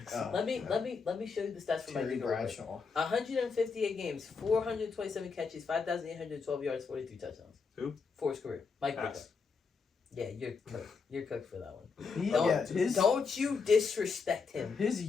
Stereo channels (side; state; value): right; quieter; 5.1 dB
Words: Oh, Let me yeah. let me show you the stats for Mike Terry Ditka. real quick. Bradshaw. 158 games, 427 catches, 5,812 yards, 43 touchdowns. Who? For his career. Mike Ditka. Ass. Yeah, you're cooked. You're cooked for that one. He, Don't, yeah, don't you disrespect him. his